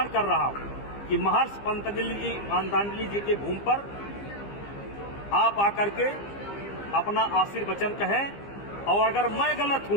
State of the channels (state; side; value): late; right; 15 ms